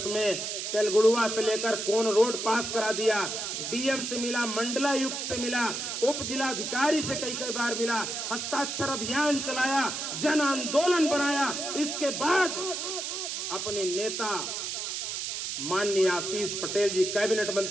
में तेलगुड़ुआ से लेकर कोन रोड पास करा दिया। डीएम से मिला, मंडलायुक्त से मिला, उप जिलाधिकारी से कई कई बार मिला, हस्ताक्षर अभियान चलाया, जन आंदोलन बनाया। इसके बाद अपने नेता माननीय आशीष पटेल जी, कैबिनेट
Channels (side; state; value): right; noise; hiss, 4 dB below the sound